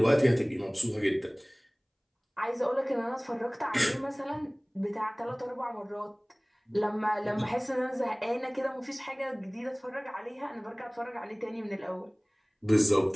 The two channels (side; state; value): both; identical; correlation 1.00